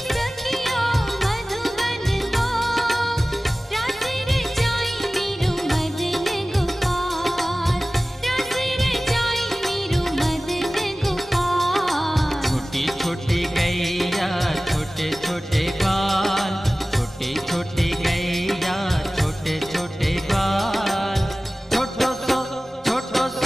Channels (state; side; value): normal; both; correlation 0.97